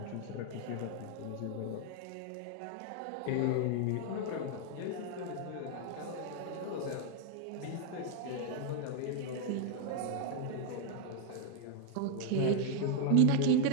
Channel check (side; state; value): both; different; correlation 0.00